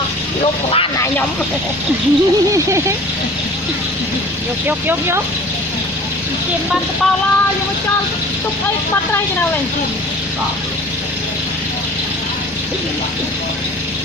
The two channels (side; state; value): both; normal; correlation 0.44